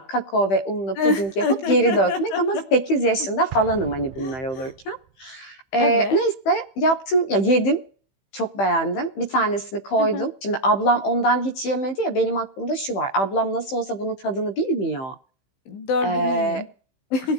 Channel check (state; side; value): late; right; 15 ms